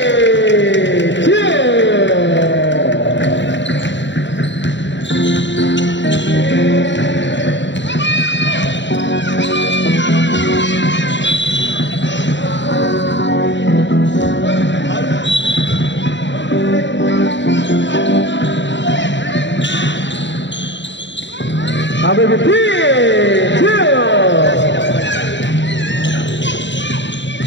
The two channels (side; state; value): right; late; 0.53 ms